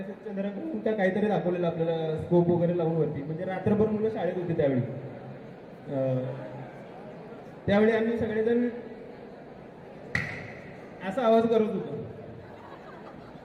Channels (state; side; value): identical; both; correlation 1.00